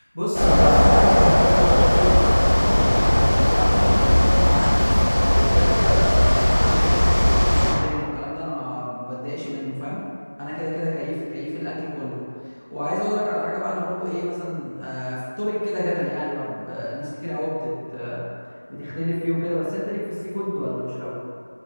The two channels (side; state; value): both; inverted; correlation -1.00